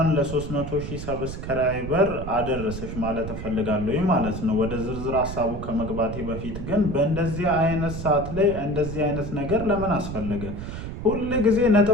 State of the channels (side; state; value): right; noise; rumble, 7 dB below the sound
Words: ለ300,000 ሰብስክራይበር አደረሰሽ ማለት እፈልጋለሁ ማለት ነው። ወደ ዝርዝር ሐሳቡ ከመግባቴ በፊት ግን በእንደዚህ አይነት ሰዓት ላይ እንደዚህ አይነት ነገር ለምን አስፈለገ? ሁሉ ጊዜ